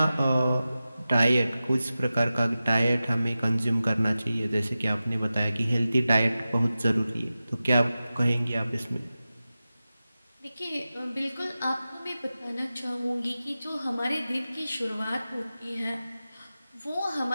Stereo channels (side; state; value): both; inverted; correlation -0.94